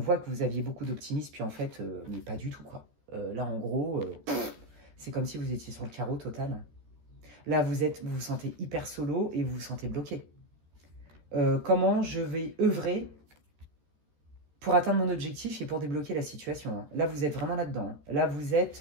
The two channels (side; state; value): left; late; 13 ms